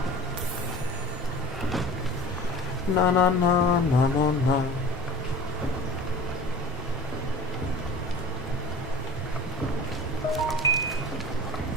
No, no, no, no, no, no.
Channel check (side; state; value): both; normal; correlation 0.39